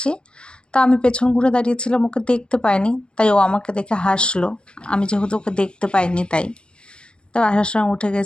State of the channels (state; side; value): late; right; 0.052 ms